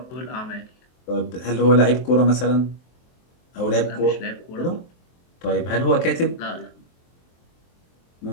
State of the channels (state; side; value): late; right; 23 ms